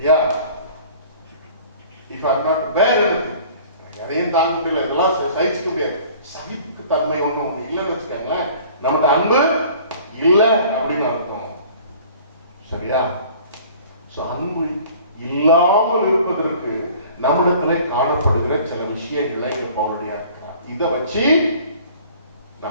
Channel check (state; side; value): inverted; both; correlation -0.49